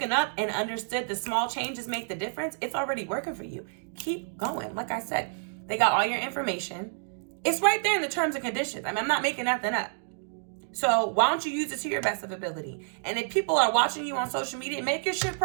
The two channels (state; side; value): silent; left; digital silence